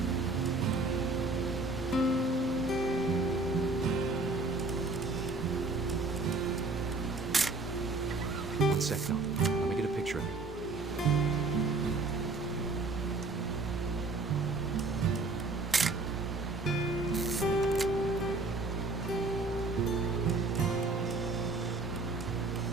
One sec, Dawn. Let me get a picture of you.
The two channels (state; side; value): quieter; left; 3.4 dB